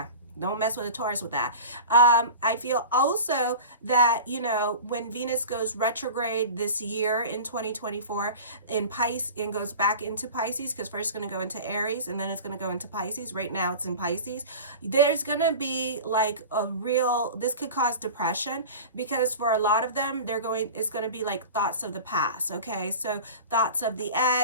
Don't mess with a Taurus with that. I feel also that, when Venus goes retrograde this year in 2024 in Pisces and goes back into Pisces, because first it's going to go into Aries and then it's going to go into Pisces. Right now it's in Pisces. There's going to be like this could cause depression, because for a lot of them, it's going to be like thoughts of the past. Okay. So thoughts of the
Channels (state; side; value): inverted; both; correlation -0.35